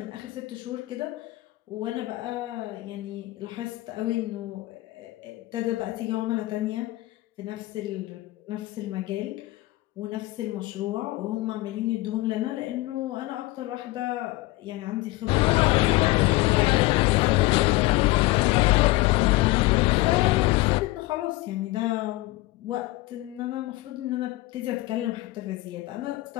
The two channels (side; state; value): right; quieter; 19.8 dB